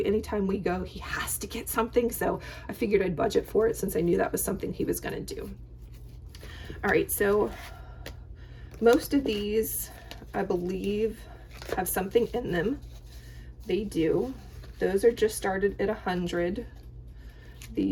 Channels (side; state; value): both; identical; correlation 1.00